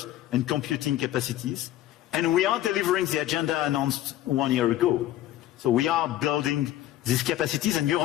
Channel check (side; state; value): right; quieter; 13.7 dB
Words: and computing capacities. And we are delivering the agenda announced 1 year ago. So we are building these capacities, and